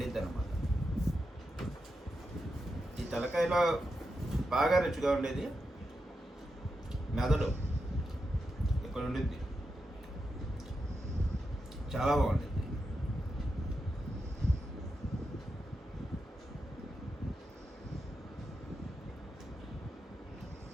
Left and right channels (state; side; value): normal; both; correlation 0.87